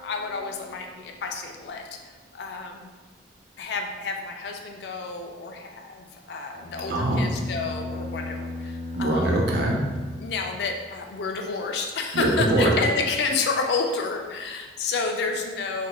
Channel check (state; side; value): normal; both; correlation 0.30